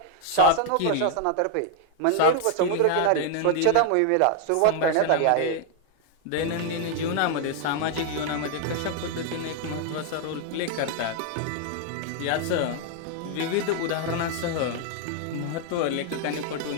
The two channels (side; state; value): both; different; correlation 0.00